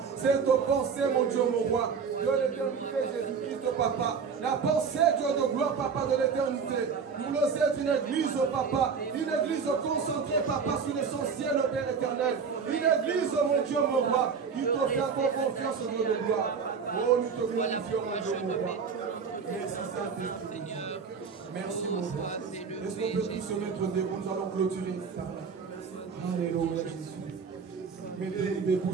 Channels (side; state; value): left; quieter; 5.9 dB